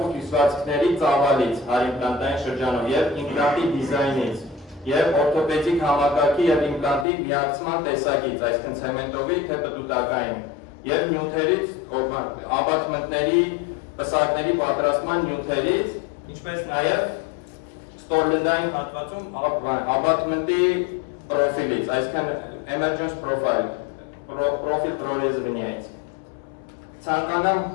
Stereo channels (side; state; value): right; drops out; at 7.1 s